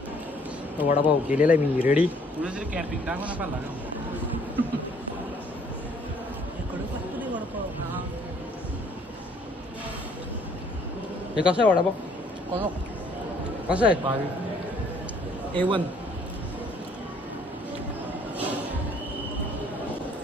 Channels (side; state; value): both; normal; correlation 0.61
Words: वडापाव केलेला आहे मी रेडी. हे कसं आहे वडापाव? कसं आहे? A1.